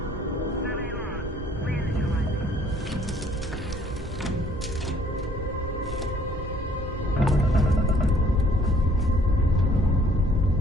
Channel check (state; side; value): normal; both; correlation 0.60